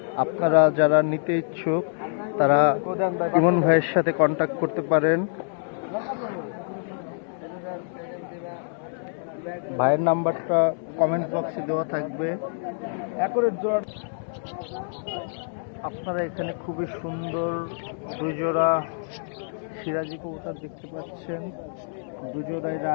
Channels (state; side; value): silent; right; digital silence